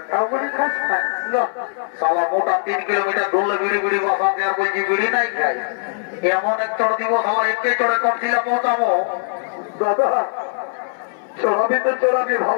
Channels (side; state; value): right; silent; 59 dB below the other